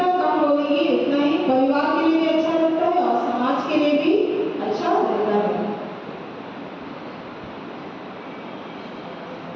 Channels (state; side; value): identical; both; correlation 1.00